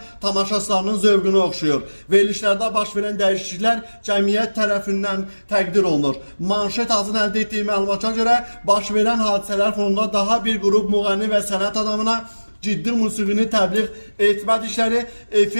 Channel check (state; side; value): inverted; both; correlation -1.00